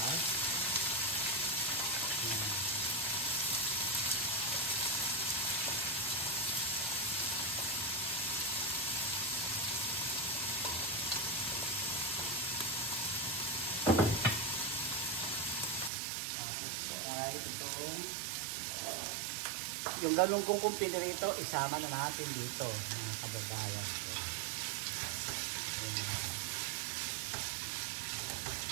Yung ganun kong kumpili rito, isama na natin dito, mga kababayan ko.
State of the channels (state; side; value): drops out; left; at 15.9 s